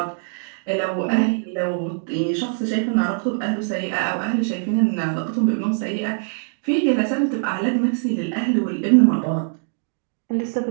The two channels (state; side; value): silent; left; digital silence